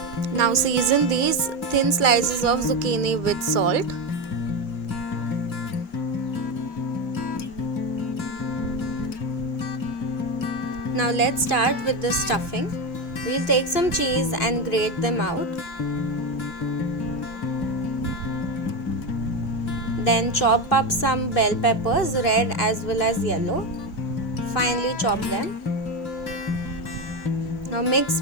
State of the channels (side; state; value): right; late; 2.6 ms